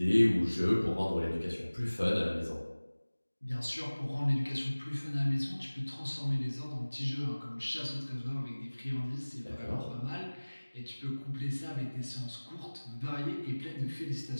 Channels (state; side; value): inverted; both; correlation -1.00